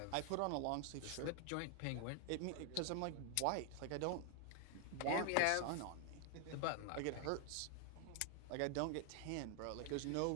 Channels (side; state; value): both; different; correlation 0.00